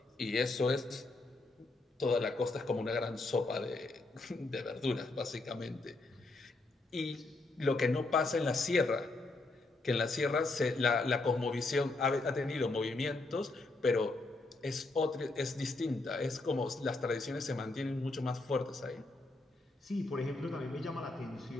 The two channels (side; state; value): right; quieter; 3.2 dB